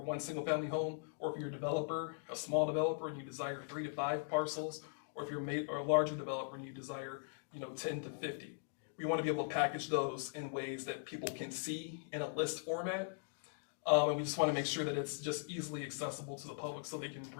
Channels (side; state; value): right; silent; digital silence